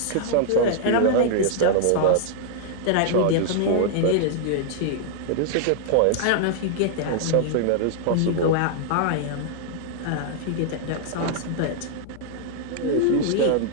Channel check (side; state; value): both; different; correlation -0.01